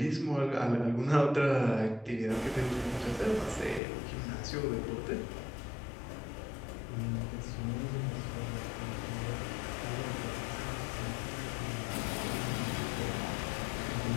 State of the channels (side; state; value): right; drops out; at 3.8 s